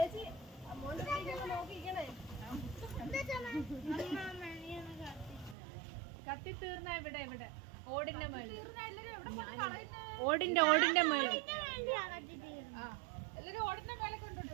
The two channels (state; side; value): drops out; left; at 5.6 s